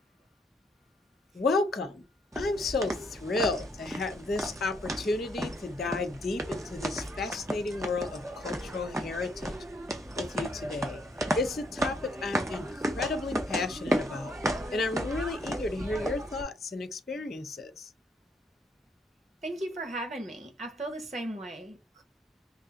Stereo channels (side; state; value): both; normal; correlation 0.71